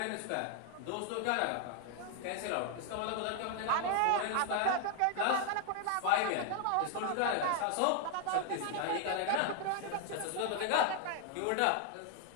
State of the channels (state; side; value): different; both; correlation 0.00